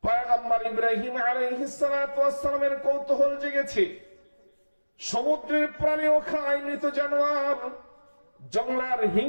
পয়গম্বর ইব্রাহিম আলাইহিস সালাতু ওয়াস সালামের কৌতূহল জেগেছে। সমুদ্রের প্রাণীও খায় মৃত জানোয়ার, জংলার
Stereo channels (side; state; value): both; inverted; correlation -1.00